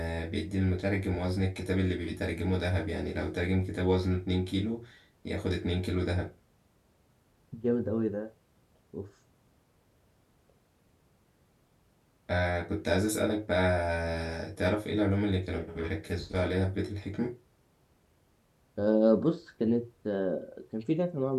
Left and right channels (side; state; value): both; identical; correlation 1.00